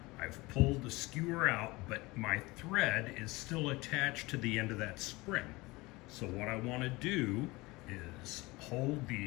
I've pulled the skewer out, but my thread is still attached to the end of that spring. So what I want to do is hold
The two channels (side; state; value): right; quieter; 22.3 dB